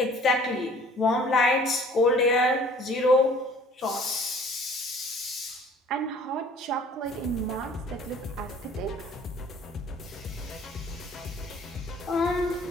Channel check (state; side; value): normal; both; correlation 0.52